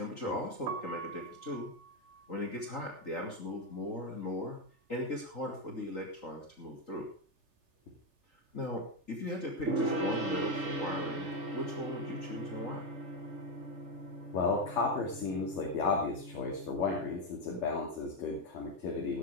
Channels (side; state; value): left; late; 3.4 ms